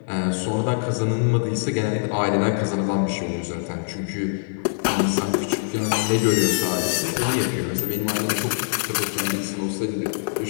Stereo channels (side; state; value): right; silent; 60 dB below the other